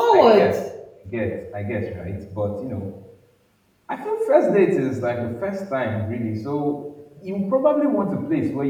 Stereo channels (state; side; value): identical; both; correlation 1.00